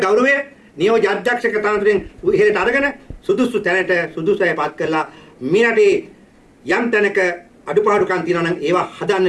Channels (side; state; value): both; identical; correlation 1.00